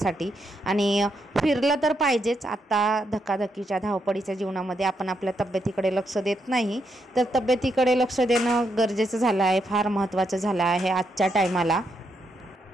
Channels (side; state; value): both; normal; correlation 0.80